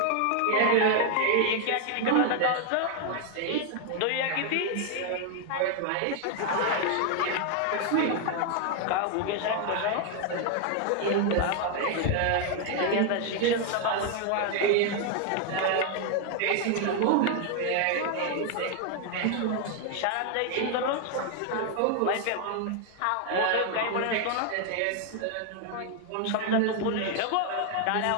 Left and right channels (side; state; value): both; different; correlation 0.00